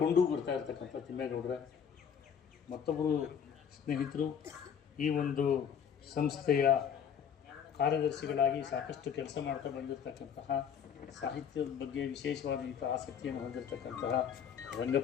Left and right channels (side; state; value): right; quieter; 7.7 dB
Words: ಬರ್ತಾ ಇರ್ತಕ್ಕಂಥ ತಿಮ್ಮೇಗೌಡರ, ಮತ್ತೊಬ್ಬರು ಸ್ನೇಹಿತರು ಈ ಒಂದು ಸಂಸ್ಥೆಯ ಕಾರ್ಯದರ್ಶಿಗಳಾಗಿ ಸಾಕಷ್ಟು ಕೆಲಸ ಮಾಡ್ತಾ ಬಂದಿರತಕ್ಕಂತಹ, ಸಾಹಿತ್ಯದ ಬಗ್ಗೆ ವಿಶೇಷವಾದಂಥ ಆಸಕ್ತಿಯನ್ನು ಹೊಂದಿರತಕ್ಕಂತಹ